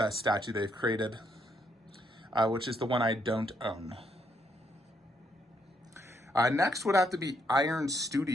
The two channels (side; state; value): both; normal; correlation 0.75